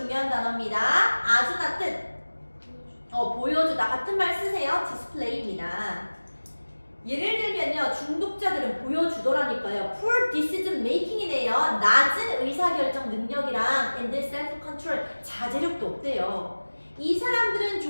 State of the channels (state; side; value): inverted; both; correlation -1.00